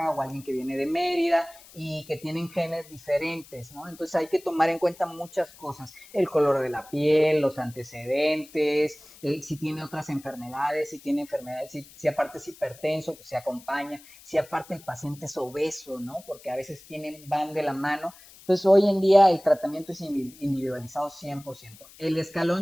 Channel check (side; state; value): left; noise; hiss, 22 dB below the sound